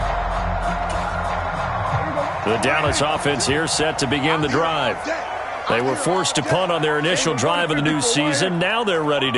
The Dallas offense here set to begin the drive. They were forced to punt on their initial drive of the new season. Now they're ready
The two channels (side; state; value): both; identical; correlation 1.00